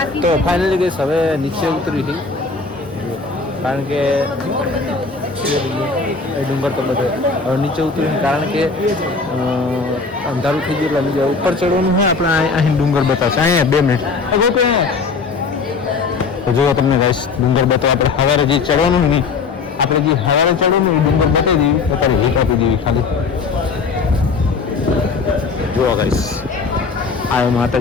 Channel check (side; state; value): right; quieter; 4.5 dB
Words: તો ફાઇનલી ગઈશ હવે નીચે ઉતરી હતી કારણ કે એ ડુંગર તો બધે હવે નીચે ઉતરીને કારણ કે અંધારું થઈ ગયું એટલે નીચે ઉપર ચડવાનું હોય. આપણે અહીં ડુંગર બતાવશે. અહીંયા 2 મિનિટ તો જુઓ તમને ગાઈસ ડુંગર બતાવો. આપણે સવારે જે ચડવાનું નહીં, આપણે જે સવારે ચડવાનું એ ડુંગર બતાવી દેવી. અત્યારે હીટ આપી દેવી ખાલી. જુઓ ગાઈસ આ